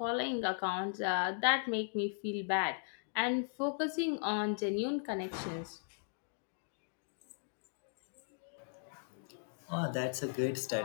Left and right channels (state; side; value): silent; right; digital silence